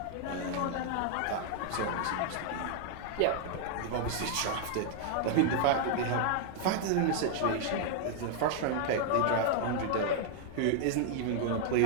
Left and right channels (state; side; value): different; both; correlation 0.00